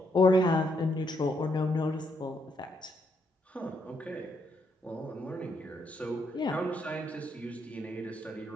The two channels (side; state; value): both; normal; correlation 0.76